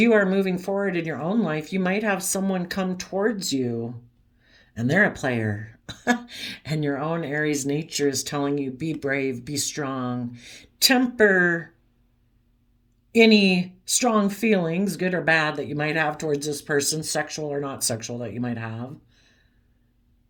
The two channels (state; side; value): identical; both; correlation 1.00